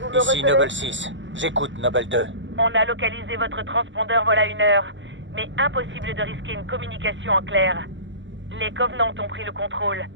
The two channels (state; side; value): late; left; 0.54 ms